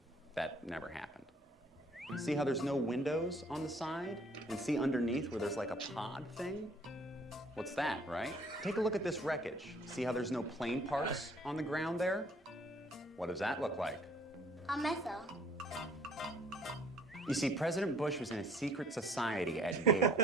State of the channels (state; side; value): normal; both; correlation 0.58